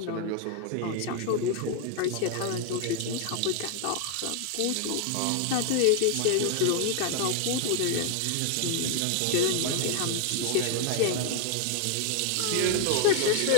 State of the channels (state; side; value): different; both; correlation 0.00